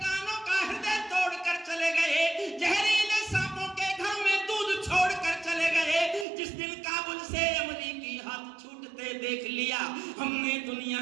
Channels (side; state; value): left; drops out; at 6.2 s